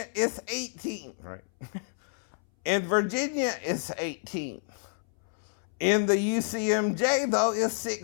it's 18, right? In Virginia, it's 18. In the UCMJ, though, it's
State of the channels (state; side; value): silent; right; 59 dB below the other